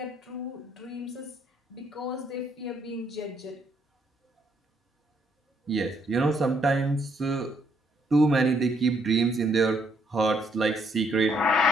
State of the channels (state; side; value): normal; both; correlation 0.71